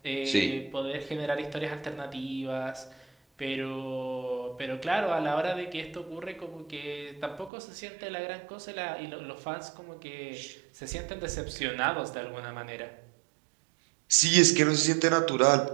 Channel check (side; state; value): left; drops out; at 7.5 s